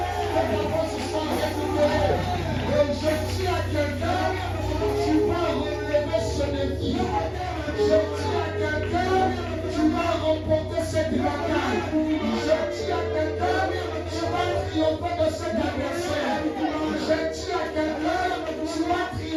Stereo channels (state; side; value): identical; both; correlation 1.00